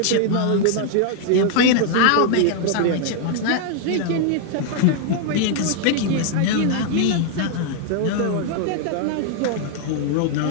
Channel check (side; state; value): both; different; correlation 0.00